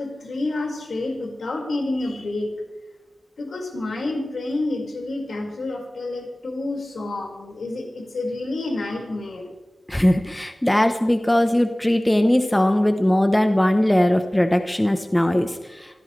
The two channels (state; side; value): normal; both; correlation 0.98